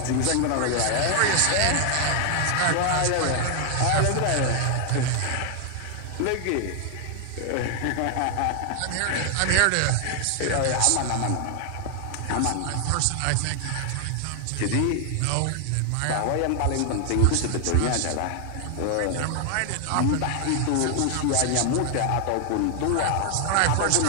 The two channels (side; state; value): both; different; correlation 0.00